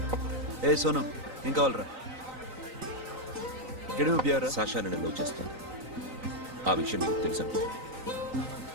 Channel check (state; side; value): late; left; 3.9 ms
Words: ఏ సోను, ఏం కావాలరా? ఇక్కడే ఉపయోగరా? సాషా నేను లవ్ చేస్తాను. ఆ విషయం నీకు తెలుసు అనుకో.